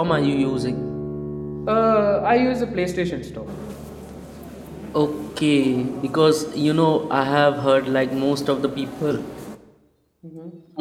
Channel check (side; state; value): both; identical; correlation 1.00